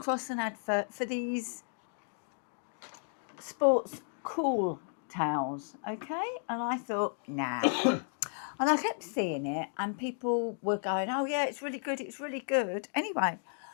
an advert for these sports cool towels, okay? And I thought, nah. And I kept seeing it, and people were going, oh, yeah, it's really good, it's really good. Anyway,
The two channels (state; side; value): silent; right; digital silence